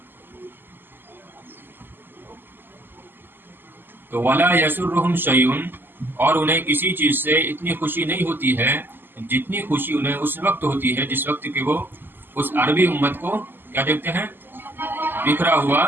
تو ولا یسرہم شیء، اور انہیں کسی چیز سے اتنی خوشی نہیں ہوتی ہے جتنی خوشی انہیں اس وقت ہوتی ہے جس وقت کہ وہ اس عربی امت کو کیا دیکھتے ہیں؟ بکھرا ہوا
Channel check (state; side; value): late; left; 0.095 ms